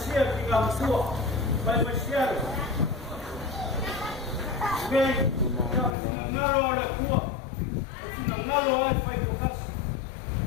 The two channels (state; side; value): drops out; right; at 6.0 s